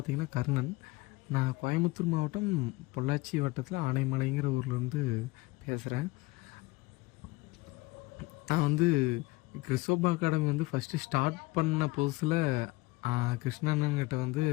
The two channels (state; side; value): quieter; right; 21.6 dB